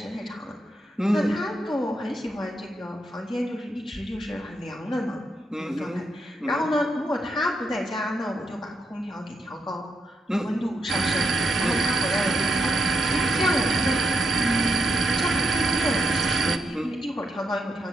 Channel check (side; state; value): both; normal; correlation 0.81